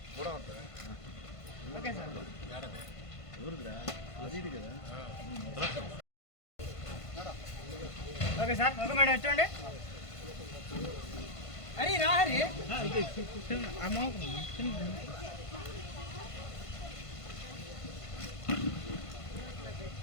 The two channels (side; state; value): right; late; 1.5 ms